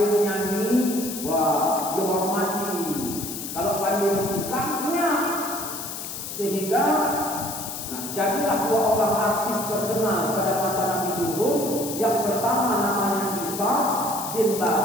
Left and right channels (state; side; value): noise; left; hiss, 7 dB below the sound